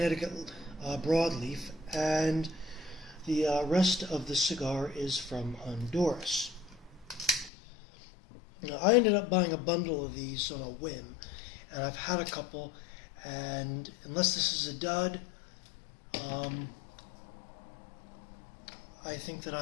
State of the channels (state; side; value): drops out; right; at 7.5 s